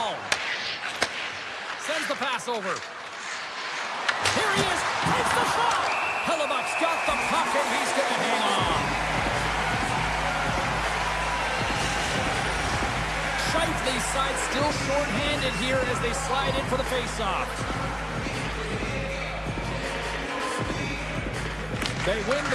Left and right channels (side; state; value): both; identical; correlation 1.00